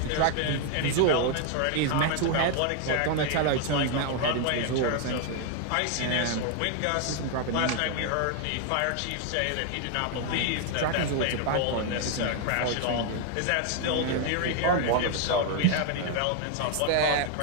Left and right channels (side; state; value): both; different; correlation 0.00